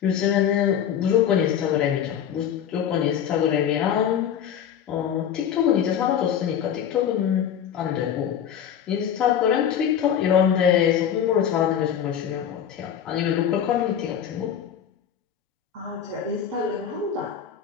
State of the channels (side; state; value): right; quieter; 8.9 dB